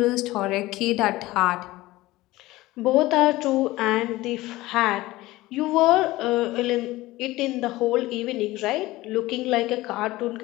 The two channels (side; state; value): right; quieter; 18.4 dB